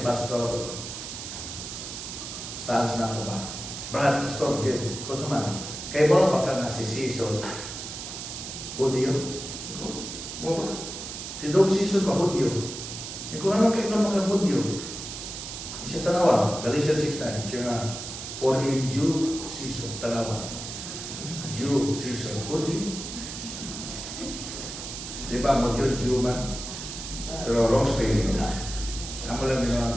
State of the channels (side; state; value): right; noise; hiss, 8 dB below the sound